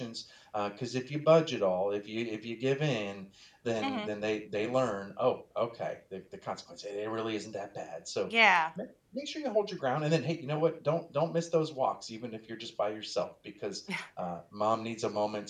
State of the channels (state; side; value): identical; both; correlation 1.00